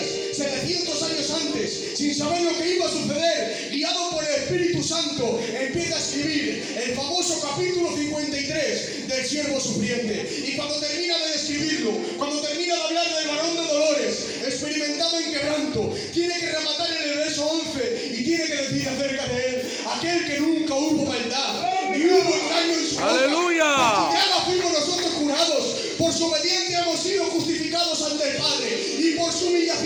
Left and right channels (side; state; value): both; identical; correlation 1.00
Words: 700 años antes, sin saber lo que iba a suceder, guiado por el Espíritu Santo, empieza a escribir el famoso capítulo 53 del siervo sufriente. Y cuando termina de describirlo, cuando termina de hablar del varón de dolores, experimentado en quebranto, tiene que rematar en el verso 11 y tiene que decir acerca de él: aquel que nunca hubo maldad, ni hubo engaño en su boca. ¡Aleluya! Por su llaga fuimos nosotros curados, por su obediencia hemos sido justificados ante el Padre, y por su